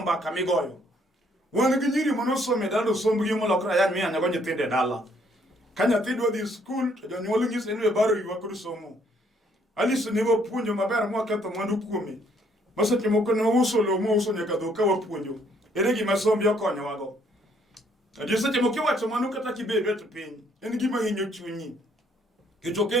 mbaka migoyo wan gi nyiri monosome dalo sombgi molokra yan miya nyago nyithinde dala ka nyathi dwa dhi skul to jonyuol ng'ise ni baro ywa kod somo Alice ne wapuonjo maber mwa ketho mwandu kuome maseche moko ne uso lo mo uso nyaka dho ka wapuonjo ere gima sombi okonyo wago adier seche moko wacho mano kata kibedo to piny en gima hinyo chunyi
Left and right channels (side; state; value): both; normal; correlation 0.67